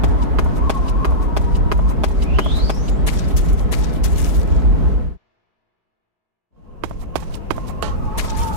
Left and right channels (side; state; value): left; late; 4.8 ms